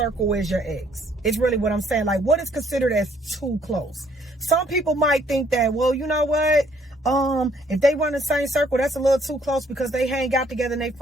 as your ex? It's really what I'm saying. Like, what is considered as too close? Some people might think that, well, you know what? If they run the same circle, that's a little too close because they hang out together and they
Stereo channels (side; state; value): both; normal; correlation 0.65